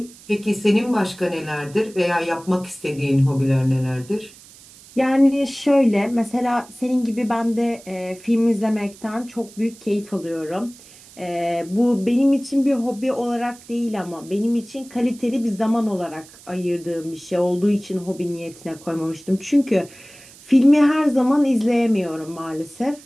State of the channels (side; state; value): right; noise; hiss, 22 dB below the sound